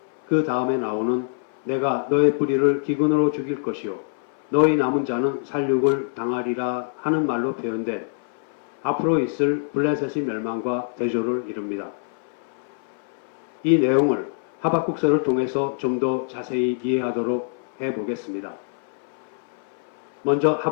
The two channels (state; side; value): silent; right; 60 dB below the other